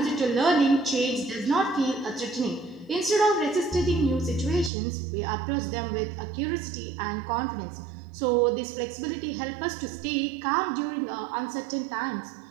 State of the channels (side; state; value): left; drops out; at 4.7 s